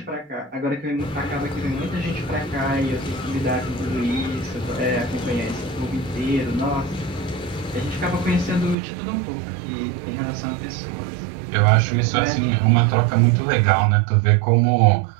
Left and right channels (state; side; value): drops out; left; at 8.8 s